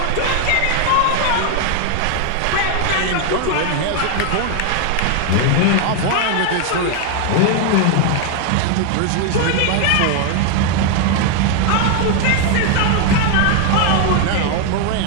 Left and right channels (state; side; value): different; both; correlation 0.01